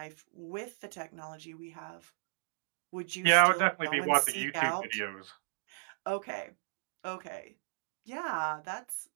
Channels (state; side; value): silent; left; digital silence